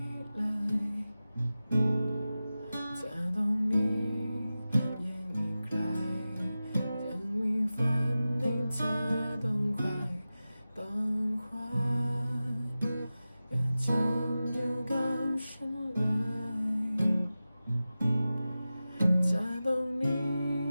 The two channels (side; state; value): both; inverted; correlation -0.95